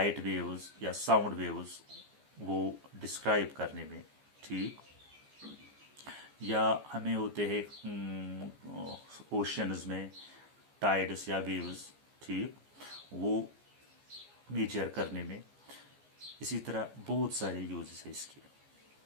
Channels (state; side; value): late; left; 14 ms